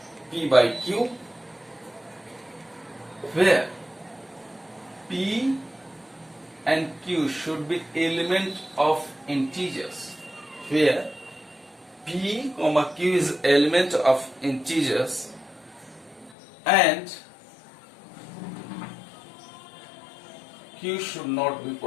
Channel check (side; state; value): right; drops out; at 16.4 s